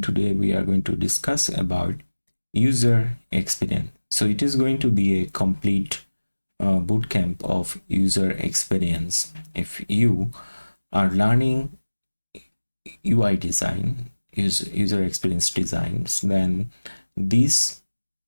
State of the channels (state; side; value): inverted; both; correlation -1.00